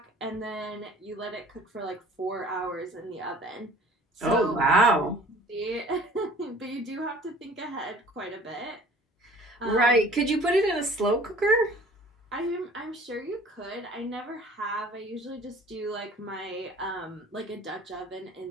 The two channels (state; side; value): normal; both; correlation 0.49